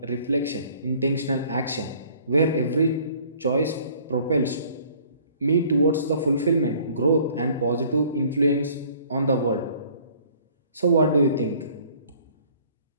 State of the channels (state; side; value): inverted; both; correlation -0.55